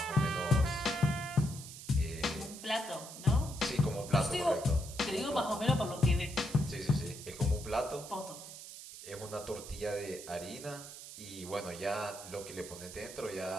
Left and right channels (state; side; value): noise; right; hiss, 13 dB below the sound